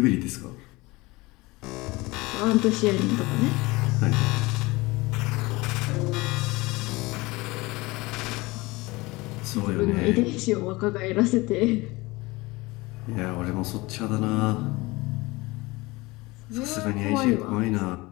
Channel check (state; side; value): quieter; right; 22.3 dB